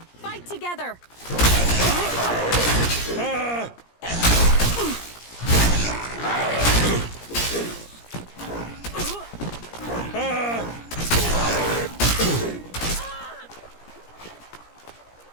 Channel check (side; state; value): right; late; 17 ms